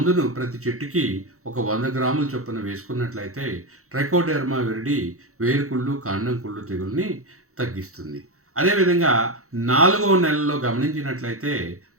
ప్రతి చెట్టుకి ఒక 100 గ్రాముల చొప్పున వేసుకున్నట్లయితే ట్రైకోడర్మా విరిడి వేరుకుళ్ళు కాండం కుళ్ళు తెగుల్ని తగ్గిస్తుంది. అదేవిధంగా 4వ నెలలో గమనించినట్లయితే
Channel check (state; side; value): late; left; 0.64 ms